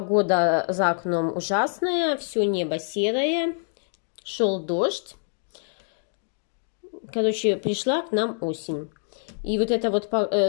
за окном ужасная, все небо серое, шел дождь. Короче, пришла к нам осень. И вот это вот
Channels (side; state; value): right; silent; digital silence